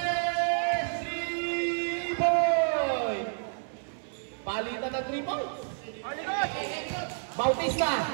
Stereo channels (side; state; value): left; silent; 58 dB below the other